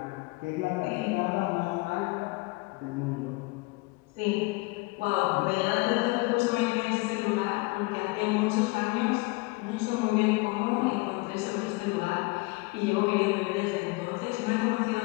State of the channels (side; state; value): right; quieter; 25.4 dB